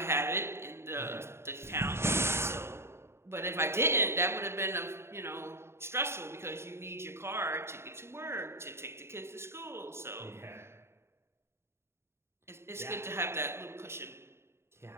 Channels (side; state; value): left; late; 0.12 ms